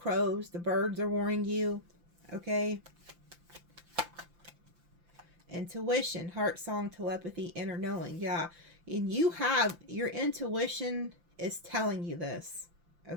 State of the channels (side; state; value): left; late; 5.9 ms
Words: the birds are warning you, okay? Intuition, heart song, telepathy, inner knowing, yeah. And you have, your intuition is telling you this,